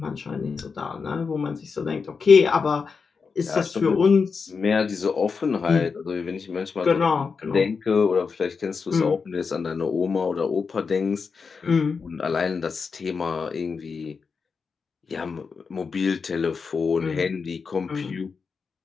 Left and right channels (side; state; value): right; quieter; 5.2 dB